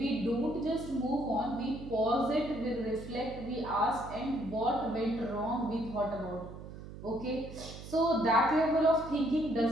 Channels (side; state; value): right; noise; hum, 13 dB below the sound